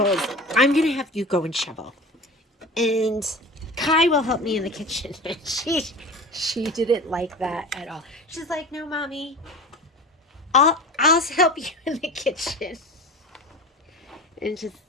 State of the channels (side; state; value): both; normal; correlation 0.34